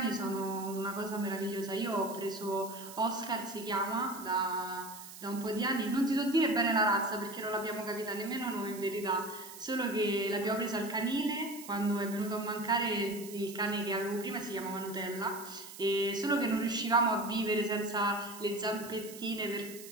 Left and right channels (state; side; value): noise; right; hiss, 14 dB below the sound